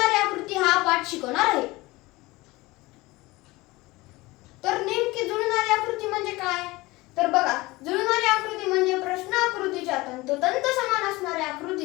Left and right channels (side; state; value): right; quieter; 21.1 dB